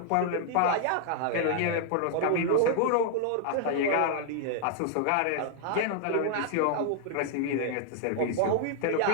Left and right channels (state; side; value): different; both; correlation 0.00